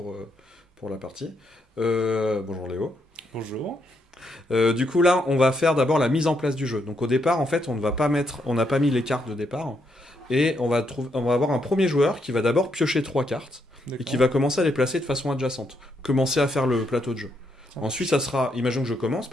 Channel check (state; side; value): normal; both; correlation 0.77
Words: la partie. Bonjour Léo. Bonjour. Du coup là on va faire d'abord la mise en place du jeu. Donc au départ en fait on n'a pas mis les cartes de départ. Et on va avoir un premier joueur qui va d'abord piocher 3 cartes. Et qui D'accord. va commencer à les placer de façon adjacente. Commencer à faire le plateau de jeu. Ça Ensuite marche. ça sera, imagine que je commence,